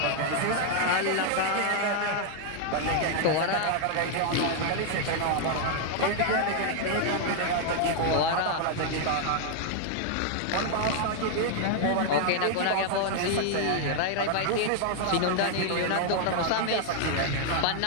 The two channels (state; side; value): different; both; correlation 0.00